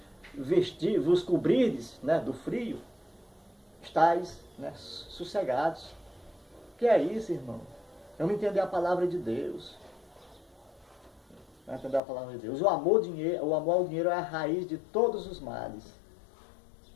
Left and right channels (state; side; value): drops out; right; at 12.0 s